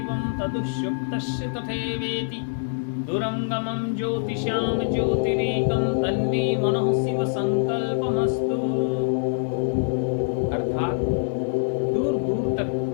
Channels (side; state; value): right; silent; digital silence